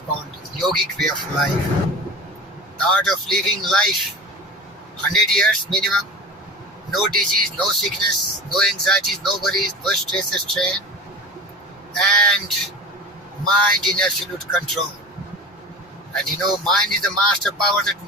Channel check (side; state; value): both; normal; correlation 0.35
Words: called yogic way of life. The art of living life 100 years minimum, no disease, no sickness, no anxieties, no worries, no stress or strain, and mind in absolute control. And you know, mind is the master power that